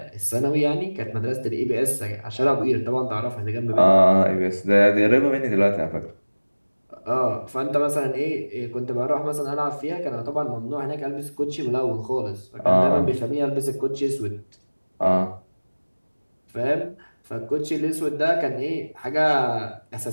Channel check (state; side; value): inverted; both; correlation -1.00